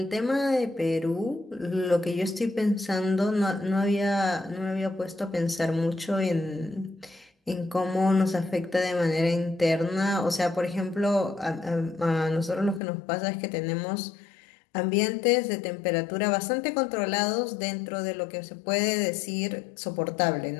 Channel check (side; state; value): right; drops out; at 12.8 s